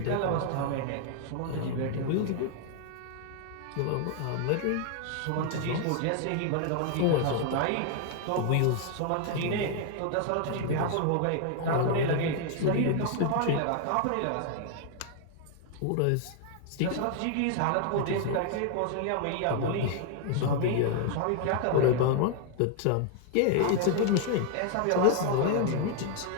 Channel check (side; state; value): both; different; correlation 0.00